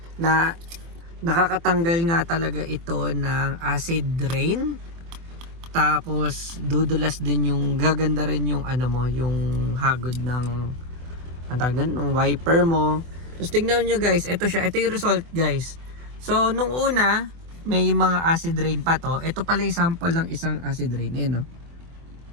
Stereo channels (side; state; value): left; late; 24 ms